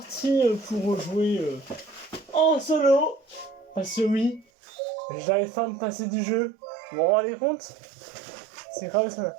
pour jouer en solo. Parce que oui, j'arrive pas à me passer du jeu. Vous vous rendez compte? C'est grave ça.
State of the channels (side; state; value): left; drops out; at 4.5 s